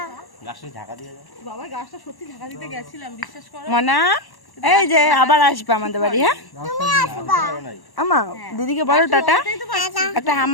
গাছটা ঢাকা দিয়ে যাও। বাবা গাছটা সত্যি ঢাকা দিতে গেছিলাম, বিশ্বাস করো। মনা, এই যে আবার আসবে আমাদের বাড়ি। হ্যাঁ আমা, দিদিকে বলো টাটা, একটা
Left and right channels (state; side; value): late; right; 1.1 ms